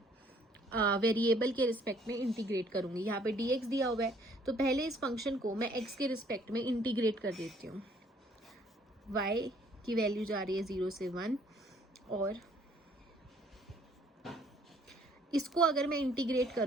वेरिएबल के रिस्पेक्ट में इंटीग्रेट करूंगी. यहाँ पे dx दिया हुआ है, तो पहले इस फंक्शन को मैं x के रिस्पेक्ट में इंटीग्रेट कर देती हूँ. y की वैल्यू जा रही है 0 से 1, और इसको अगर मैं इंटीग्रेट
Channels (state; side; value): normal; both; correlation 0.61